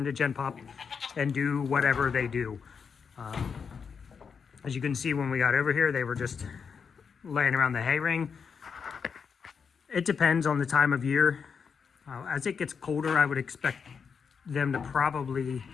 Gen Pop and do whatever they do. As you can see, when we got over here, they were just laying around the hay ring. It depends on the time of year. As it gets colder, I would expect them to probably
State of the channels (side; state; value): right; quieter; 6.1 dB